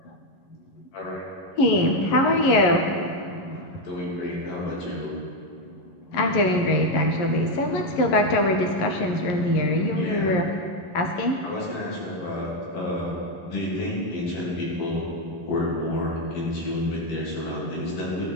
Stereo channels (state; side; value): late; right; 11 ms